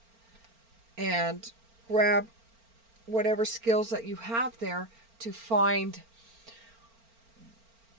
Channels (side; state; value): left; late; 4.4 ms